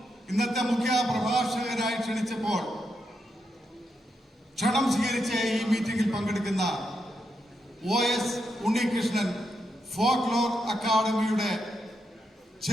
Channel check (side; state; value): both; normal; correlation 0.83